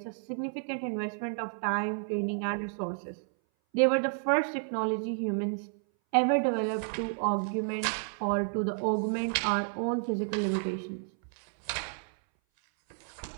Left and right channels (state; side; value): silent; left; 57 dB below the other